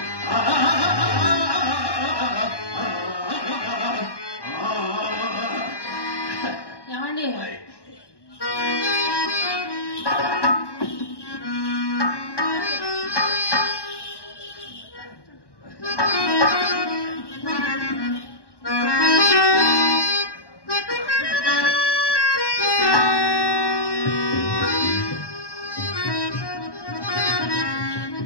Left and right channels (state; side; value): late; right; 1.1 ms